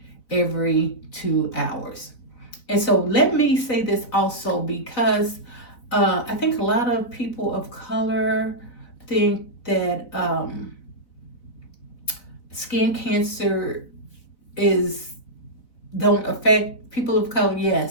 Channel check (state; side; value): late; right; 4.0 ms